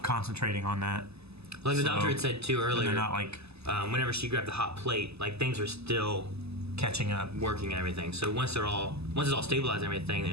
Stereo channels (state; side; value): late; left; 0.79 ms